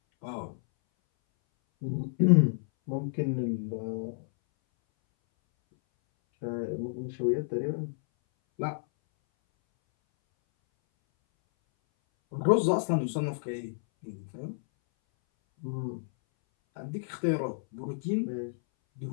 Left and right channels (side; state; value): right; silent; 58 dB below the other